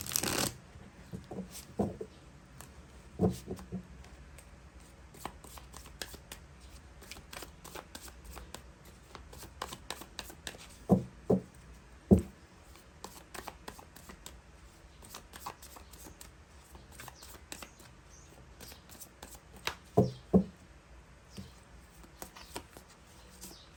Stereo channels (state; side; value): identical; both; correlation 1.00